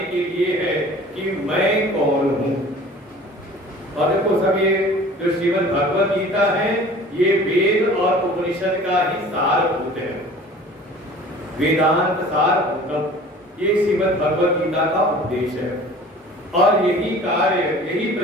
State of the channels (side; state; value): both; normal; correlation 0.45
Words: के लिए है कि मैं कौन हूं। और देखो सब ये जो श्रीमद् भगवद गीता है ये वेद और उपनिषद का ही सारभूत है, वेदांत सारभूतम, ये श्रीमद् भगवद गीता का उपदेश है। और यही कार्य, यही